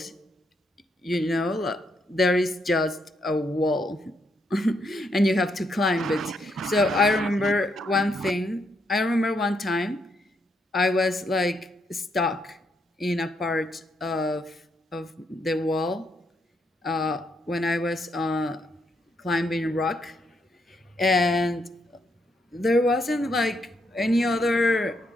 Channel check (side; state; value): both; normal; correlation 0.77